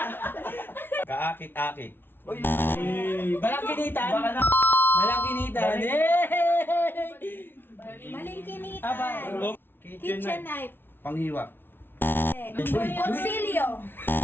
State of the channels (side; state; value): right; late; 0.10 ms